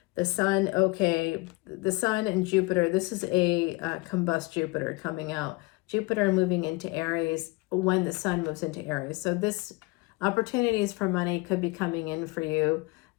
The sun, okay, the sun and Jupiter. This is a combust Jupiter coming out. Jupiter moving into Aries when the sun moves into Aries. So this opportunities for money could be coming in for you.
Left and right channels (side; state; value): right; quieter; 24.9 dB